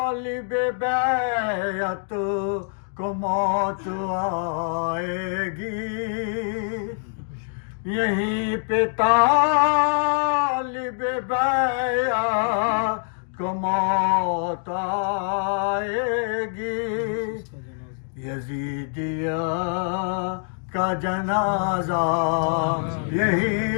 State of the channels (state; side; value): silent; right; digital silence